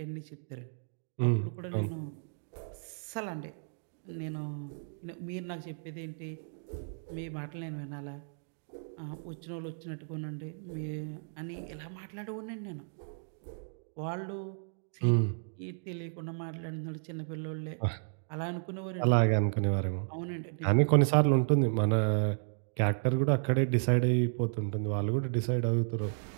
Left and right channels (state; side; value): silent; left; digital silence